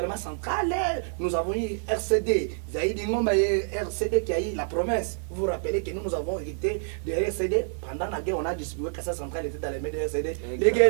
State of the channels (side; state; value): left; silent; digital silence